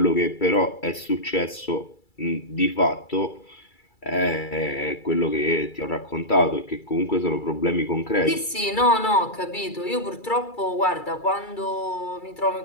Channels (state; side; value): late; right; 2.3 ms